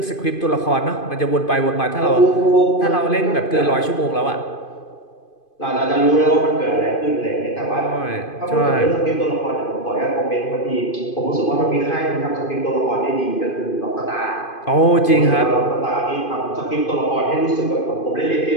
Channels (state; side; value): late; right; 2.5 ms